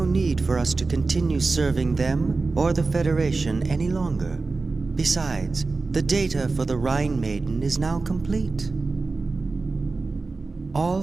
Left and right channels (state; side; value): quieter; left; 3.8 dB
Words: need for us to continue serving them or the Federation any longer. Besides, the data for the Rhine Maiden is now complete. All